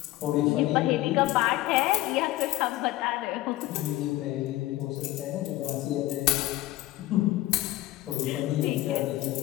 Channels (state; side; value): quieter; right; 16.7 dB